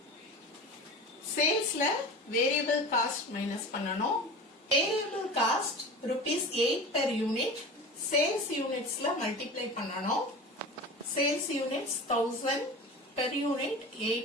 சேல்ஸ்ல variable cost minus பண்ணணும். Variable cost rupees 8 per unit. Sales யூனிட்ஸ்ல multiply பண்ணணும். Sales units 1000, per unit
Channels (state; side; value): normal; both; correlation 0.33